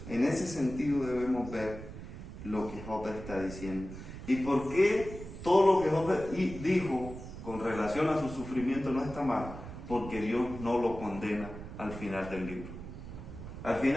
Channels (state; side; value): noise; right; rumble, 11 dB below the sound